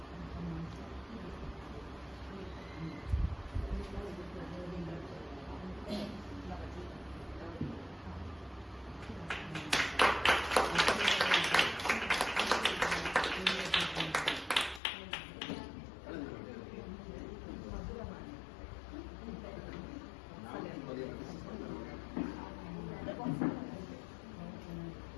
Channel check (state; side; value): drops out; right; at 14.8 s